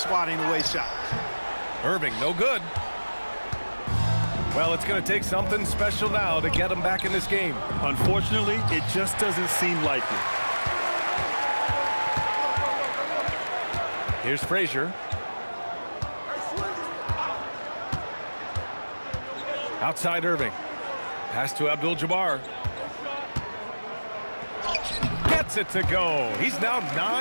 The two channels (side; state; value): both; inverted; correlation -1.00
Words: away shots. Irving, no good. Well, it's going to take something special now to get him back in this game. Unfortunately, it just doesn't seem likely. Here's Frazier. Outside Irving. Pass to Abdul-Jabbar. Gets it to go. He's now